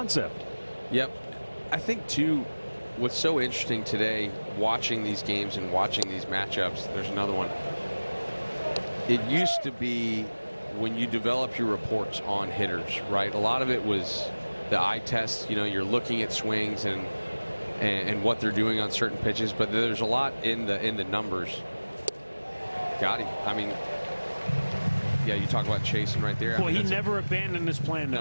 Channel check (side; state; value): both; inverted; correlation -1.00